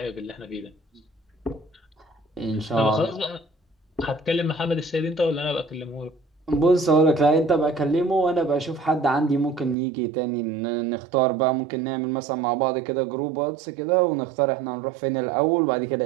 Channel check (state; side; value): drops out; left; at 9.8 s